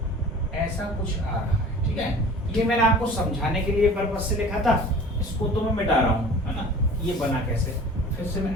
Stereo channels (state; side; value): normal; both; correlation 0.43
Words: ऐसा कुछ आ रहा है, ठीक है। ये मैंने आपको समझाने के लिए पर्पज से लिखा था, इसको तो मैं मिटा रहा हूँ, है ना। ये बना कैसे, फिर से मैं